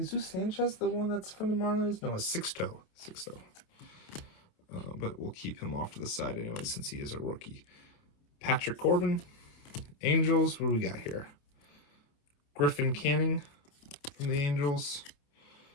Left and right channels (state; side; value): late; right; 28 ms